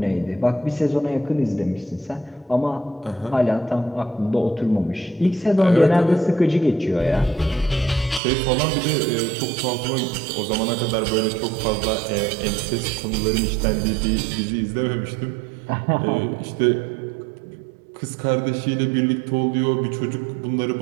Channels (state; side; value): drops out; left; at 8.2 s